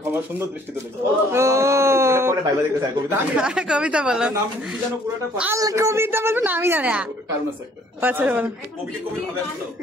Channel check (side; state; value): both; normal; correlation 0.59